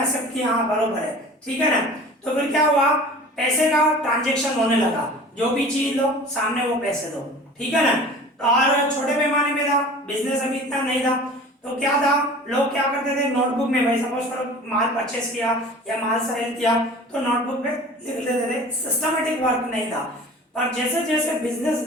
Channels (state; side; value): normal; both; correlation 0.41